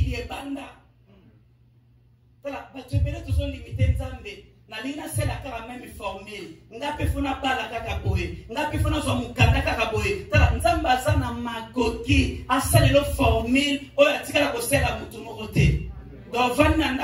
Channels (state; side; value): identical; both; correlation 1.00